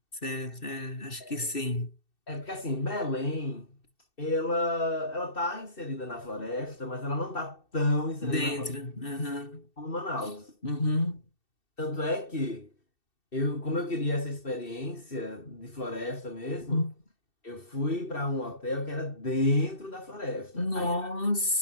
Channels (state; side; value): late; right; 2.7 ms